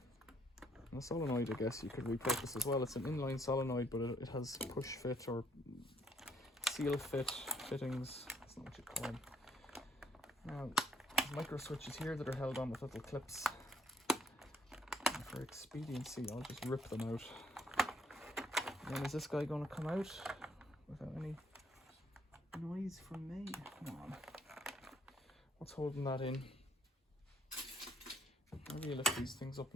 And a solenoid, I guess you could repurpose as well. It's an inline solenoid, but it has push fit or seal fit fittings. That's not what you'd call them. Now, micro switches here that are held on with little clips. For expediency, I'll just rip them out. And then is this guy going to come out without any noise from me? Come on. What's holding that in? Maybe you lift these things up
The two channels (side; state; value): both; normal; correlation 0.65